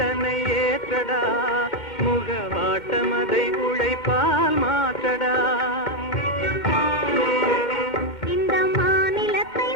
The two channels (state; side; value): late; right; 2.1 ms